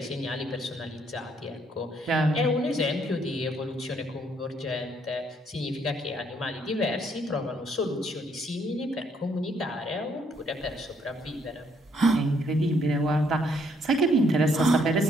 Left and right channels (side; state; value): both; normal; correlation 0.69